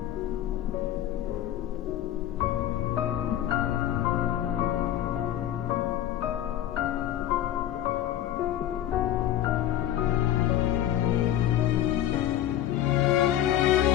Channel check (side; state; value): right; quieter; 11.7 dB